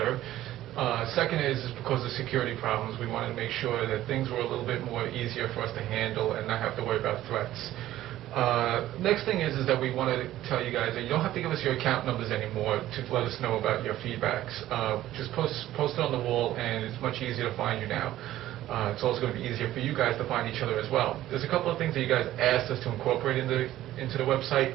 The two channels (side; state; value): left; quieter; 14.1 dB